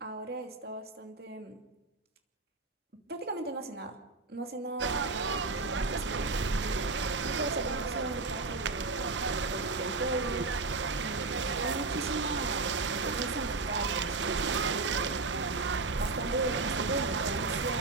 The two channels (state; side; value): quieter; left; 3.7 dB